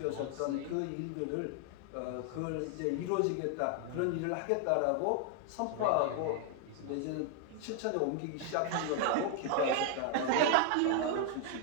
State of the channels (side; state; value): both; different; correlation 0.00